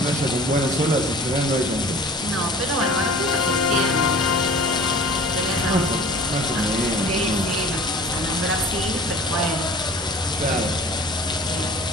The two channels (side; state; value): both; normal; correlation 0.45